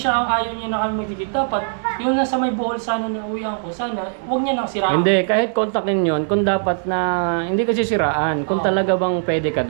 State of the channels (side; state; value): left; silent; 66 dB below the other